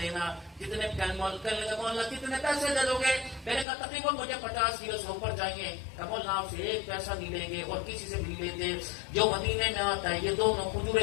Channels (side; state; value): right; drops out; at 3.7 s